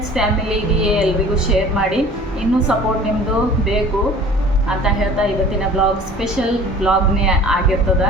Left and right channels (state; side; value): normal; both; correlation 0.46